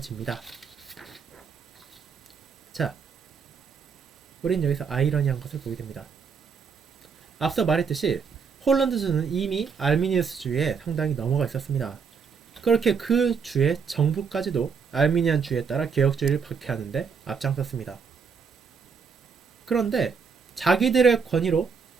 자, 우린 여기서 아이러니한 것을 보게 됩니다. 앞서 말했듯이 홀란드주는 이미 알미니우스주의에 상당히 넘어가 있었습니다. 그렇게 그 주의 정부까지도 알미니안주의에 따라 개혁주의를 박해하는데 앞장섰습니다. 그런데 자기들의 권위로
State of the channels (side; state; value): left; quieter; 5.9 dB